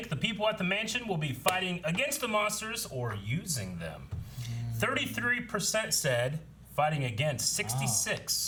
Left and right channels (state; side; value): identical; both; correlation 1.00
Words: the people at the mansion will be fighting against the monsters or using them? 33% said fighting against,